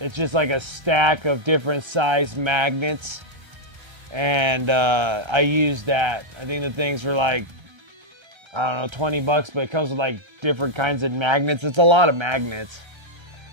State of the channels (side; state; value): left; late; 1.3 ms